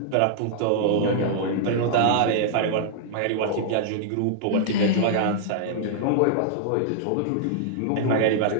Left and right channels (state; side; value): different; both; correlation -0.01